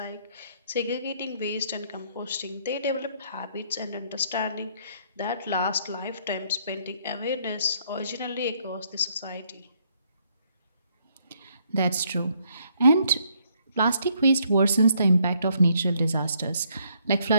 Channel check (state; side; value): inverted; both; correlation -0.70